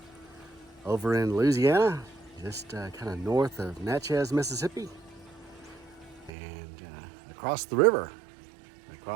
over in Louisiana, just kind of north of Natchez, Mississippi, and across the river,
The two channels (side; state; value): left; drops out; at 6.3 s